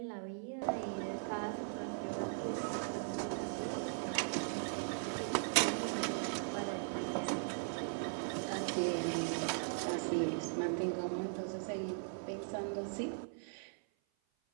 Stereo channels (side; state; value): left; silent; 52 dB below the other